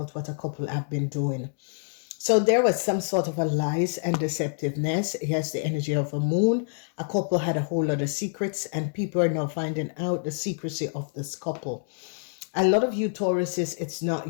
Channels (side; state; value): right; silent; digital silence